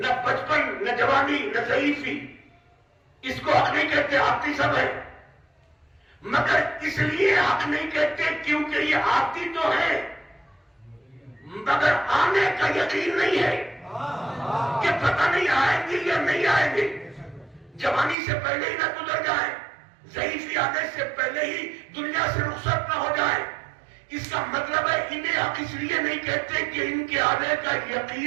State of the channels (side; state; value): left; drops out; at 18.2 s